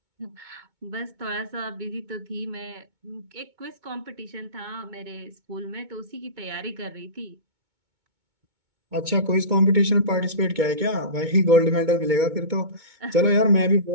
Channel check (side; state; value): left; late; 2.2 ms